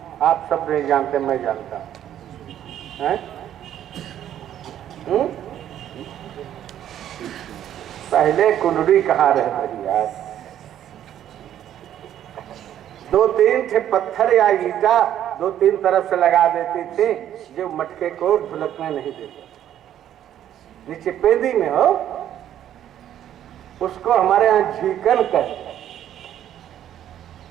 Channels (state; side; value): quieter; left; 11.0 dB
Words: आप सब नहीं जानते, मैं जानता हूं। पहले कुंडली कहाँ रह गई यार? 2-3 थे पत्थर या ईटा 2-3 तरफ से लगा देती थी, जो मटके को ढुलकने नहीं देते। नीचे पेंदी में हो, उसको हमारे यहाँ झीकन कहते हैं,